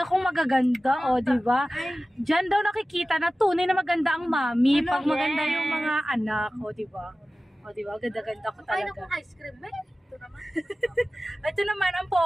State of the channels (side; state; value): both; normal; correlation 0.96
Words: kong magaganda, o, diba? Dyan daw nakikita na tunay na maganda ang mami pag maganda yung mga anak, o, diba? O, diba? Ganda-ganda ko Ay, naku, talaga. ice cream. Ito naman. Ito naman ang